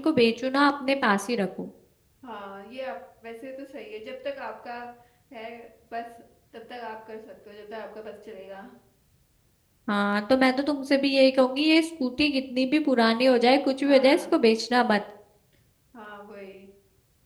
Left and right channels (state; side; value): identical; both; correlation 1.00